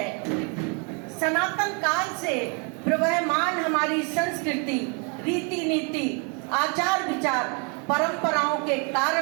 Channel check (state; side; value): quieter; left; 35.6 dB